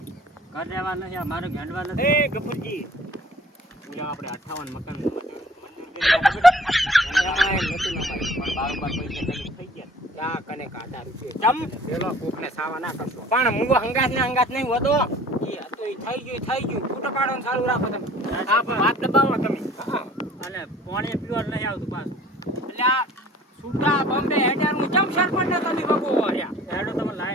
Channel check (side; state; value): both; normal; correlation 0.50